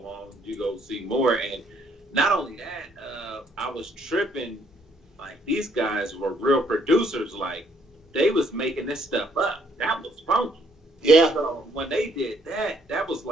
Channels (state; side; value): normal; both; correlation 0.67